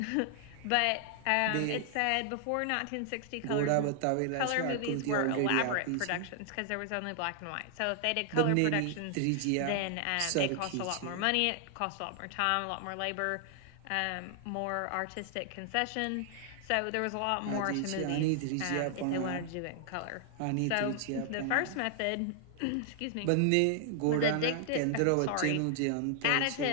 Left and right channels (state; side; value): different; both; correlation 0.00